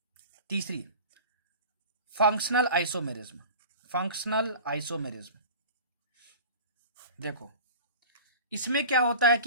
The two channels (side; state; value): both; inverted; correlation -0.38